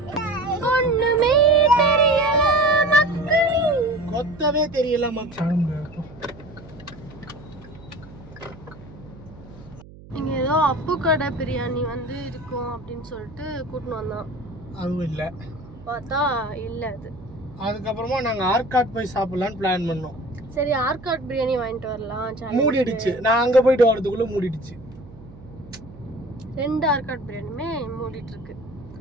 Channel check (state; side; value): noise; right; hum, 19 dB below the sound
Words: ஒண்ணுமே தெரியல மக்களே. கொத்தவே தெரியல மக்கள். இங்க ஏதோ அப்பு கடை பிரியாணி வந்து இருக்கும் அப்படின்னு சொல்லிட்டு கூட்டின்னு வந்தோம். அதுவும் இல்ல, பார்த்தா இல்ல அது. அதுக்கப்புறமா நாங்க ஆர்காட் போய் சாப்பிடலாம்னு பிளான் பண்ணோம். சரி ஆர்காட் பிரியாணி வாங்கிட்டு வரலாம். மூடிடுச்சு. நான் அங்க போயிட்டு வரதுக்குள்ள மூடிடுச்சு. 2 ஆர்காட் பிரியாணியுமே மூடிட்டு இருக்கு.